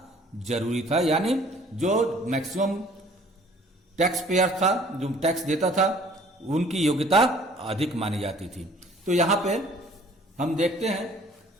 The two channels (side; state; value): both; normal; correlation 0.54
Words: जरूरी था, यानी जो मैक्सिमम टैक्स पेयर था, जो टैक्स देता था, उनकी योग्यता अधिक मानी जाती थी। तो यहां पे हम देखते हैं